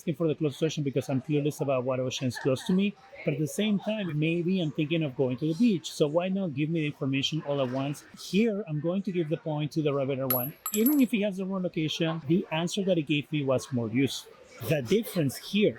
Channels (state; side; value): identical; both; correlation 1.00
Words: for the closest ocean because I'm curious about what ocean is close to me. But at the same time, maybe I'm thinking of going to the beach. So why not give me the information all at once? Here, I'm going to give the point to the Rabbit one. Even if he has the wrong location, the answer that he gave me was more useful. The difference